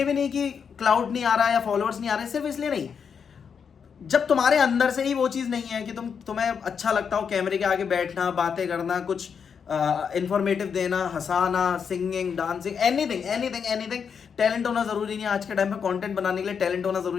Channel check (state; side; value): quieter; right; 6.7 dB